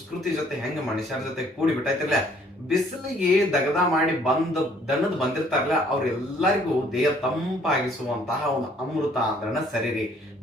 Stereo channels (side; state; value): both; normal; correlation 0.61